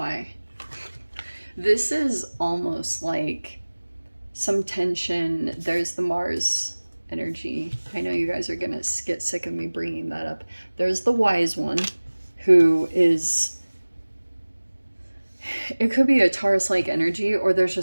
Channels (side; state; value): both; inverted; correlation -1.00